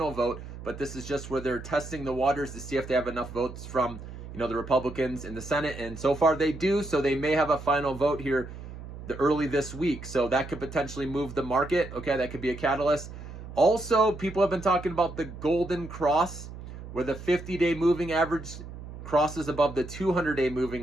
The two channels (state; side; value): noise; right; hum, 12 dB below the sound